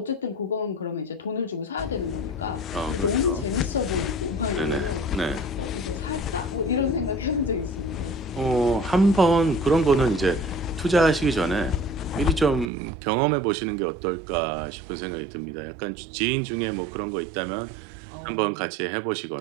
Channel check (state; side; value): drops out; left; at 12.7 s